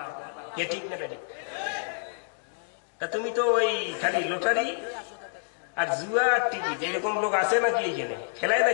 কে ঠিক না বেঠিক? তা তুমি তো ওই খালি লটারি আর জুয়া টিকিট, এরকম লোক আছে নাকি এখানে? খেলায়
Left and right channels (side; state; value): right; silent; digital silence